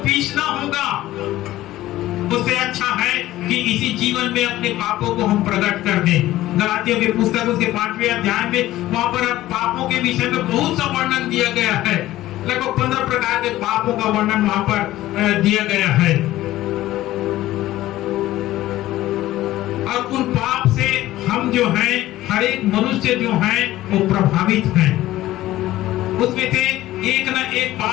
पीसना होगा। उससे अच्छा है कि इसी जीवन में अपने पापों को हम प्रकट कर दें। गलातियों की पुस्तक उसके 5वें अध्याय में वहां पर पापों के विषय में बहुत सा वर्णन दिया गया है। लगभग 15 प्रकार के पापों का वर्णन वहां पर दिया गया है। और उन पाप से हम जो हैं, हर एक मनुष्य जो है वो प्रभावित हैं। उसमें से एक ना एक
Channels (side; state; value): right; quieter; 15.4 dB